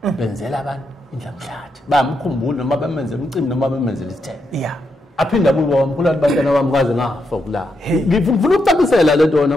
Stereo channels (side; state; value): both; normal; correlation 0.82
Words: benzela abantu indlamhlathi bamkhumbula noma bemenzela umcimbi noma bemenzela isithebe aphinda bubo wamkhulu abantwana bami kaze ngafa kula ngifuna ukucacisela lento